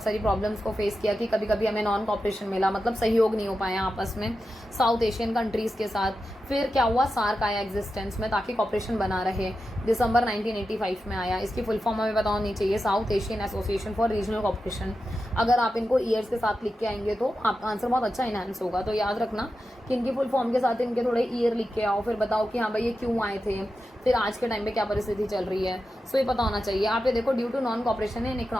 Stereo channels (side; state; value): both; normal; correlation 0.90